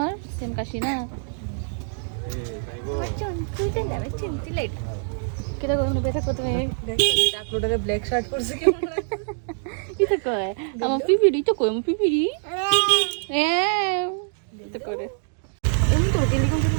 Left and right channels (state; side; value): silent; left; digital silence